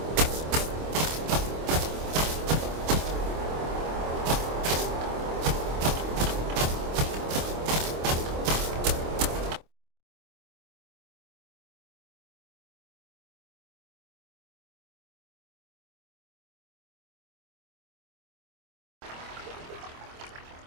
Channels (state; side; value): late; left; 25 ms